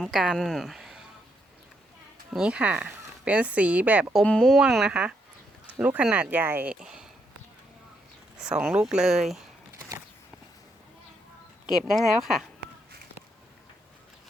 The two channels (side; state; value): both; normal; correlation 0.77